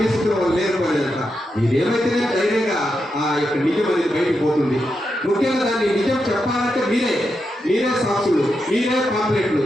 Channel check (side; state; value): both; normal; correlation 0.86